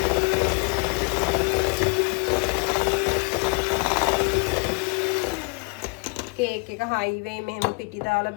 කේක් එක හයිවේ මෙහෙම පිටි දාලා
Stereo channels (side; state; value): right; quieter; 32.3 dB